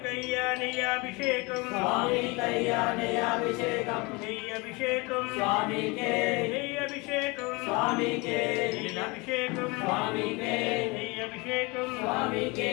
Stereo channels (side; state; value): right; quieter; 26.4 dB